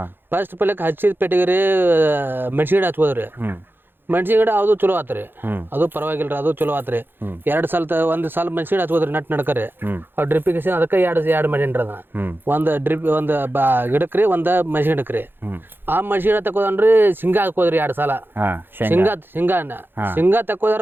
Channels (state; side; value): late; left; 0.10 ms